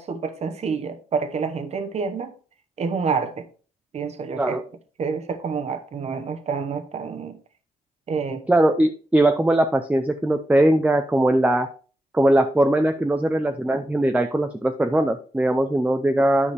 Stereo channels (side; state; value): both; normal; correlation 0.86